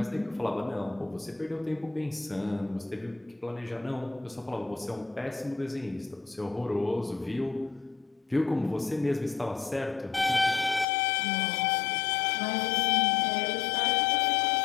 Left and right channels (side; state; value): right; drops out; at 10.9 s